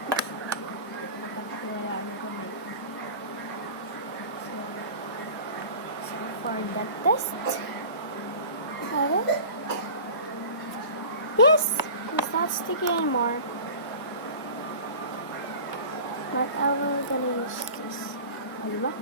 So for the test, yes, it's not sticky anymore. But I will gonna use this. Diba?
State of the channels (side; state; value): both; inverted; correlation -0.38